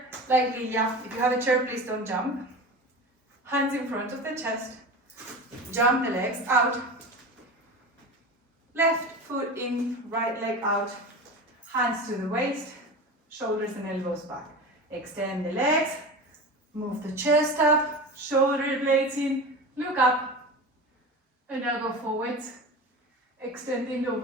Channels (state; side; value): normal; both; correlation 0.30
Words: like Liliia. If you have a chair, please don't jump. Hands in front of the chest. Jump the legs out. Left foot in, right leg out. Hands to the waist, shoulders and elbows back. Extend the legs, move the chest up, shoulder blades in, look up, and now go forwards, extending